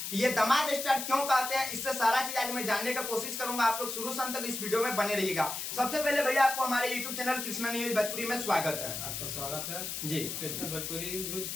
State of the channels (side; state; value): left; noise; hiss, 5 dB below the sound